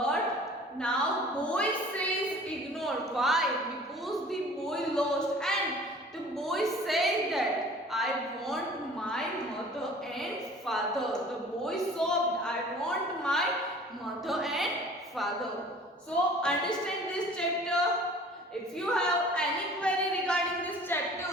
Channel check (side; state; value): both; normal; correlation 0.47